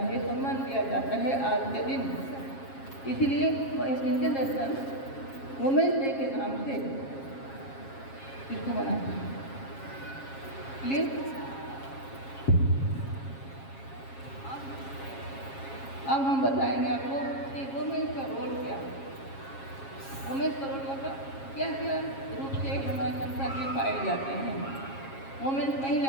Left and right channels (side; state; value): right; late; 7.4 ms